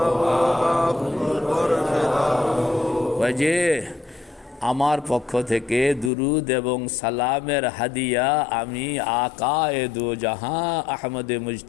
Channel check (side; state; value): right; drops out; at 6.1 s